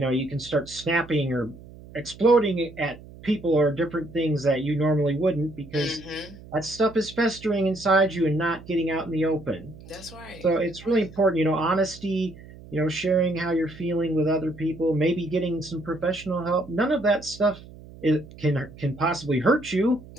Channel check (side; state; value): right; noise; hum, 19 dB below the sound